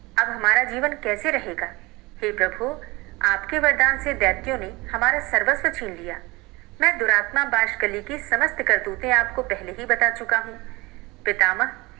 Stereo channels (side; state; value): left; quieter; 23.1 dB